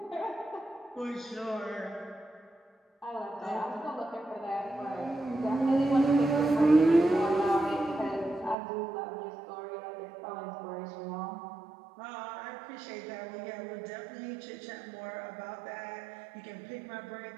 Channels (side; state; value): left; drops out; at 8.6 s